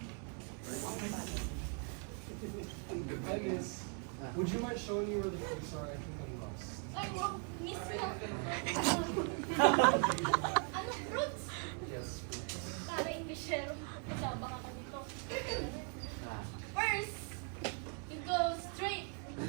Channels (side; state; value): left; quieter; 39.4 dB